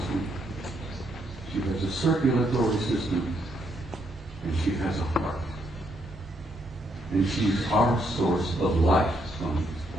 She has a circulatory system. And she has a heart. And she's our source of life on this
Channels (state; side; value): noise; right; rumble, 21 dB below the sound